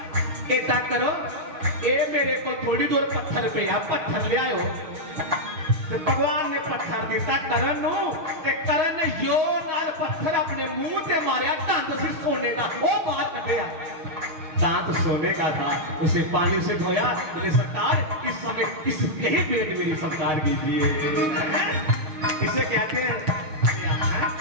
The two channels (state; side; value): late; left; 6.5 ms